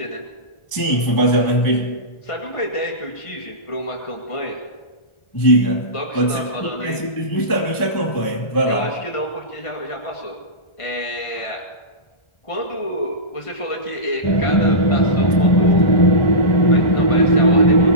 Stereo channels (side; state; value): right; late; 1.4 ms